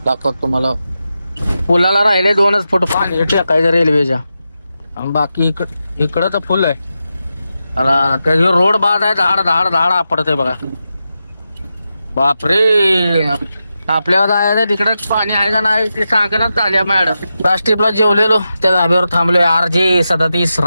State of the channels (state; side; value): inverted; both; correlation -0.90